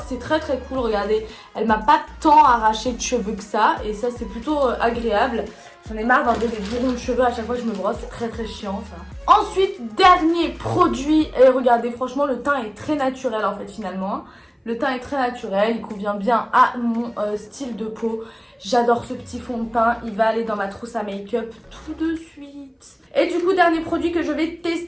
c'est très cool. Regardez, elle m'a pas tant arraché de cheveux que ça. Et ça, c'est plutôt agréable. J'en ai marre d'enlever des bourrons de cheveux à chaque fois que je me brosse. C'est très chiant ça. Ensuite, dernier produit. Et regardez, franchement, le teint est très naturel en fait finalement. Le teint est très naturel, il convient bien à mon style de peau. J'adore ce petit fond de teint, il va aller dans ma trousse à make-up tout de suite. Et du coup, dernier produit que je vais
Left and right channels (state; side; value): identical; both; correlation 1.00